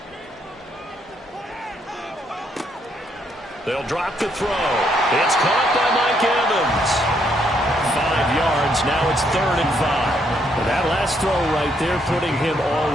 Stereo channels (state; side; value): normal; both; correlation 0.73